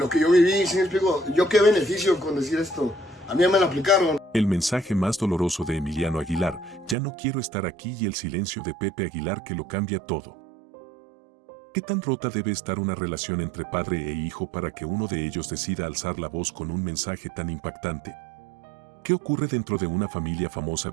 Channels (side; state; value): left; drops out; at 7.0 s